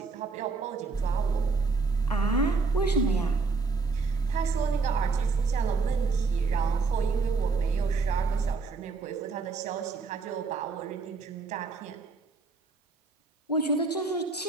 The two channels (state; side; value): quieter; left; 4.2 dB